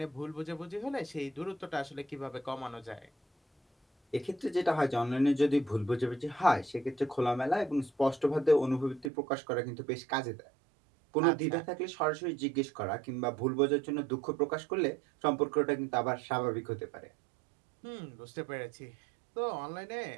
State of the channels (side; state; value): left; drops out; at 9.1 s